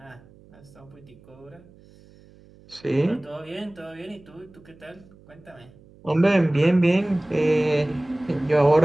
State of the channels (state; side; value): noise; right; hum, 25 dB below the sound